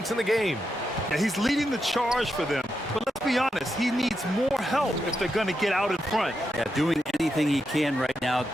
in the game. Yeah, he's leading the charge for them. But let's be honest, he needs more help if they're going to get out in front. Yeah, doing anything he can right now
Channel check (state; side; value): normal; both; correlation 0.85